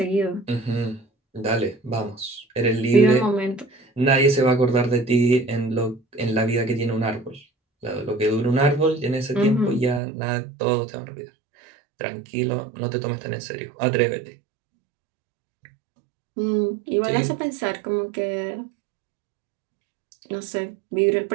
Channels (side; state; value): left; drops out; at 10.0 s